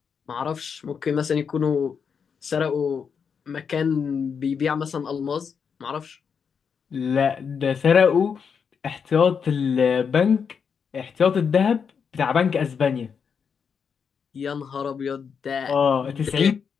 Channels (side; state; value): right; quieter; 6.5 dB